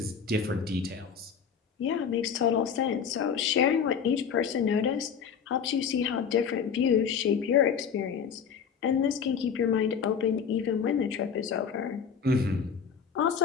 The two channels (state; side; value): quieter; right; 7.0 dB